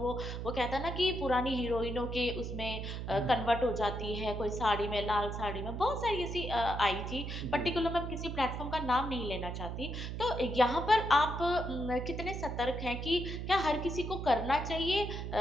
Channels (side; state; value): right; noise; hum, 5 dB below the sound